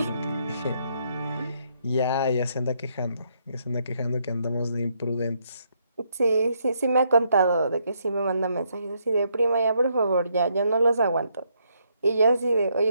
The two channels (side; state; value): both; inverted; correlation -0.74